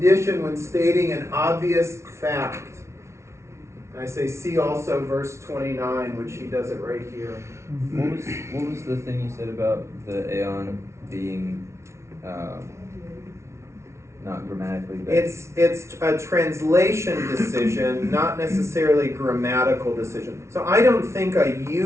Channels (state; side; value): late; left; 0.13 ms